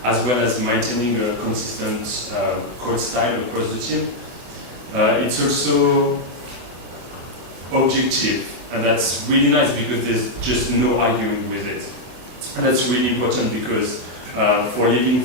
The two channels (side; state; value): left; late; 24 ms